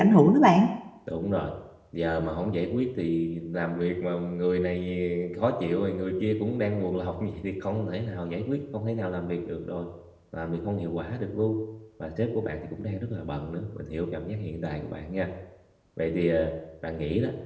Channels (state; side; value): identical; both; correlation 1.00